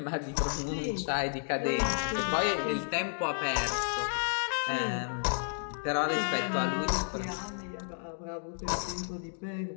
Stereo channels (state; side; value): silent; right; digital silence